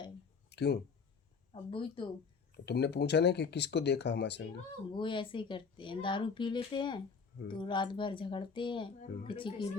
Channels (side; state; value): right; quieter; 5.4 dB